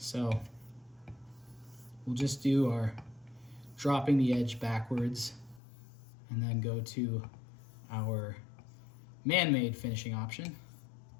we'll just do our dropping the edge backwards and then go to our man-made finishing option.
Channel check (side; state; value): right; drops out; at 5.6 s